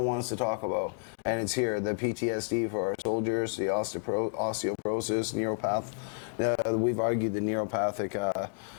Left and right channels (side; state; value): right; silent; digital silence